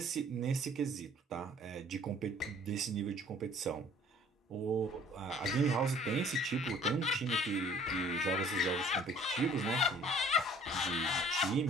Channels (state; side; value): normal; both; correlation 0.54